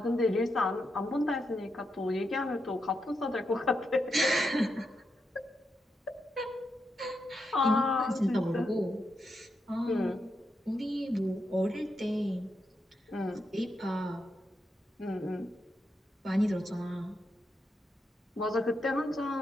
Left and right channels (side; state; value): both; normal; correlation 0.84